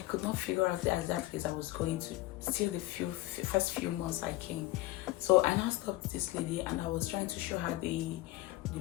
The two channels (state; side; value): quieter; right; 18.3 dB